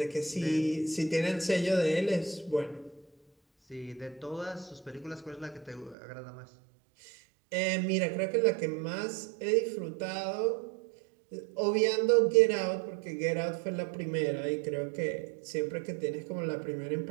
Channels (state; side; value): drops out; left; at 6.0 s